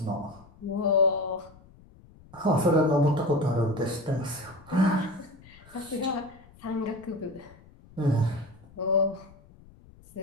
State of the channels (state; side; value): noise; left; rumble, 24 dB below the sound